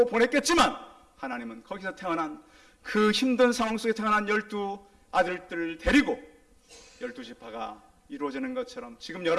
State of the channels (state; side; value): identical; both; correlation 1.00